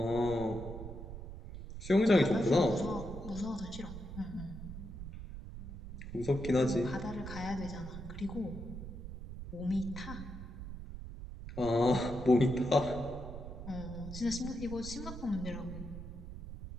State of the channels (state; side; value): noise; right; rumble, 10 dB below the sound